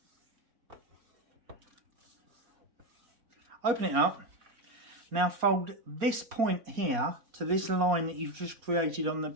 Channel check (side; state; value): left; late; 4.2 ms